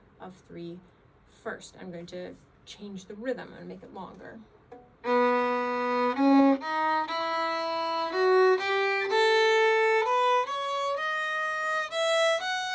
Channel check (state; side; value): identical; both; correlation 1.00